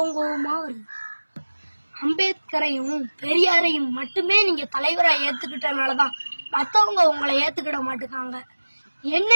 வருது. அம்பேத்கரையும் பெரியாரையும் மட்டுமே நீங்க தலைவரா ஏத்துக்கிட்டனாலதான் மத்தவங்க உங்களை ஏத்துக்கிட மாட்டுக்காங்க.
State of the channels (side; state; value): both; inverted; correlation -1.00